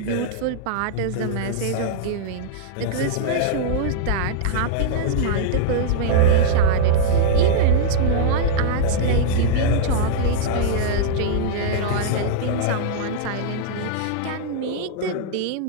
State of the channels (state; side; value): different; both; correlation -0.01